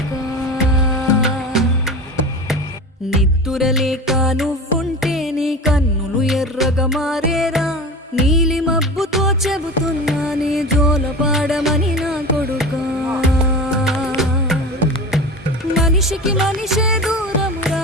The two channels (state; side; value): normal; both; correlation 0.31